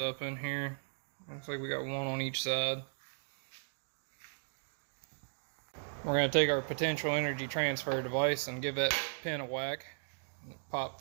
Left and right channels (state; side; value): silent; left; digital silence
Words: up in here. Looks like we got one on each side. We're going to take our potential energy transfer device and give that pin a whack. And it popped